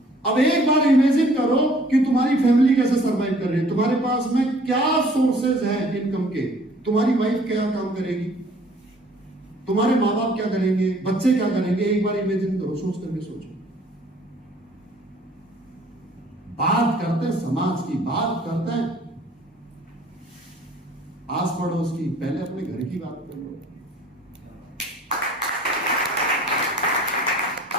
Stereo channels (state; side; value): normal; both; correlation 0.55